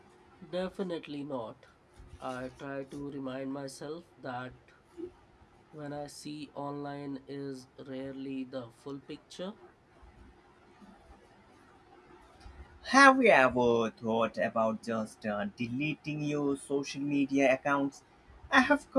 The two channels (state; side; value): identical; both; correlation 1.00